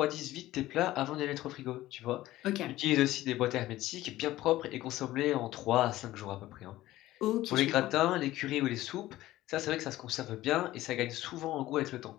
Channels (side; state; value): right; quieter; 15.8 dB